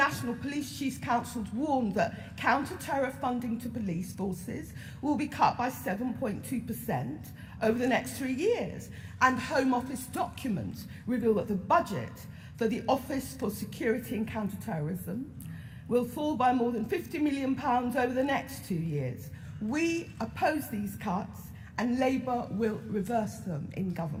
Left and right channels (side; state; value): both; identical; correlation 1.00